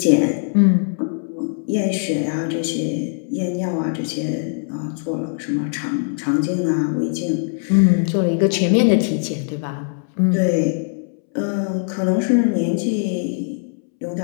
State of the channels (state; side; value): silent; right; 65 dB below the other